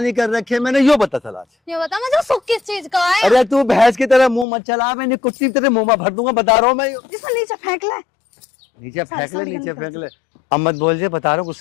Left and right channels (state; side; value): drops out; right; at 4.5 s